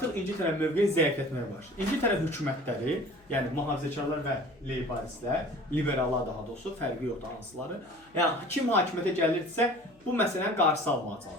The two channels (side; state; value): left; noise; hum, 30 dB below the sound